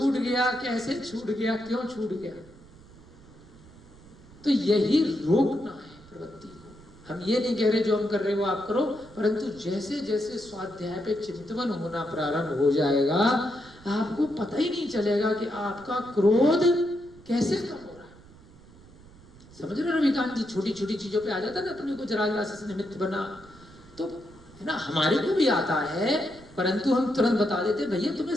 गया, कैसे छूट गया, क्यों छूट गया। तो यही रोकना है प्रवृत्ति को। हम ये नहीं कह रहे जो हम कर रहे हो आप करो, परंतु जैसे जैसे स्वाध्याय पे चिंतन होना प्रारंभ हो जाएगा, आपको पता ही नहीं चलेगा कि आपका क्रोध कैसे कम हो रहा है। समझ रहे हो रविकांत जी, छोटी छोटी चीजों पे आ जाता है ना, अपने को जरा से निमित्त बना, तो है ना, हमारे को भी आता है, परंतु हम तुरंत बता देते भैया तुम्हें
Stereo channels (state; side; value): noise; right; rumble, 23 dB below the sound